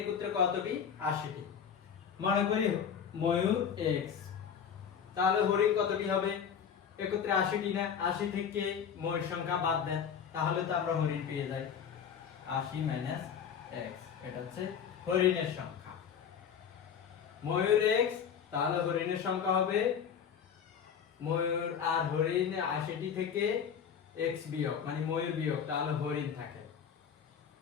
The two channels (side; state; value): right; quieter; 7.6 dB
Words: একত্রে কতটি? ৮০টি। মনে করি ময়ূর এক্স, তাহলে হরিণ কতটি হবে? একত্রে ৮০টি না, ৮০ থেকে ময়ূর সংখ্যা বাদ দেন, তাহলে তো আমরা হরিণ পেয়ে যাই। ৮০ মাইনাস এক্স, এটা হচ্ছে হরিণের সংখ্যা। ময়ূর এক্স, তাহলে হরিণের সংখ্যা হবে ময়ূর আর হরিণ ৮০টি থেকে এক্স বিয়োগ, মানে ময়ূর বিয়োগ, তাহলে হরিণ থাকে।